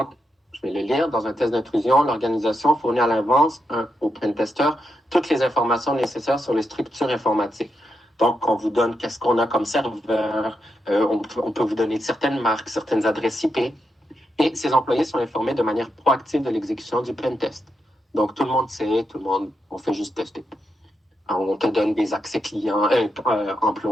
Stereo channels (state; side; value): normal; both; correlation 0.84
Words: je vais le lire. Dans un test d'intrusion, l'organisation fournit à l'avance au pentester toutes les informations nécessaires sur les structures informatiques. Donc, on vous donne qu'est-ce qu'on a comme serveur, on peut vous donner certaines marques, certaines adresses IP, et ces employés sont informés de manière proactive de l'exécution du pentest. Donc, tout le monde sait, on fait juste tester. Alors, on te donne des accès clients,